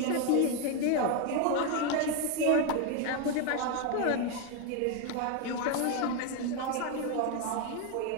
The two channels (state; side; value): different; both; correlation 0.02